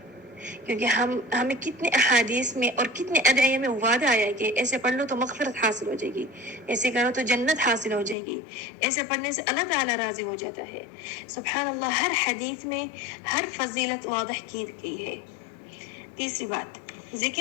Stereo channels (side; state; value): right; drops out; at 8.2 s